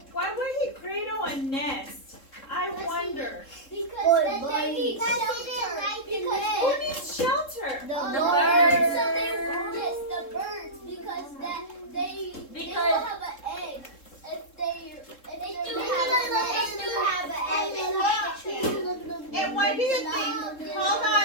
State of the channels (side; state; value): right; late; 3.7 ms